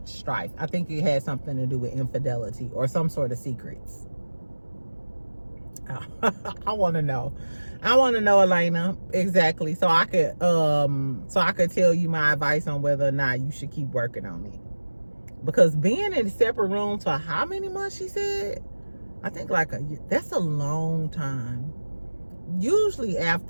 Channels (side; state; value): both; inverted; correlation -1.00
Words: strife. I think it had something to do with infidelity or some sort of secrets. I want to know. I want to know, Elena, exactly, so I could tell you my advice on whether or not you should keep working on it. Because being in a separate room for how many months, she said? I think like a year. That's a long time. Usually